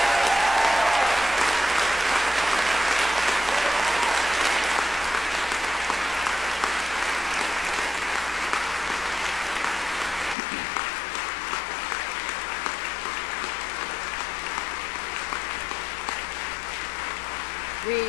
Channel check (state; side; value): drops out; right; at 10.4 s